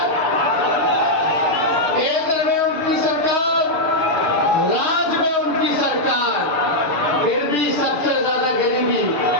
केंद्र में उनकी सरकार, राज्य में उनकी सरकार, फिर भी सबसे ज्यादा गरीबी,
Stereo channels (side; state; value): right; late; 6.8 ms